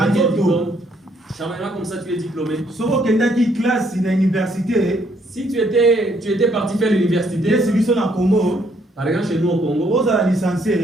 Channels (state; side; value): normal; both; correlation 0.69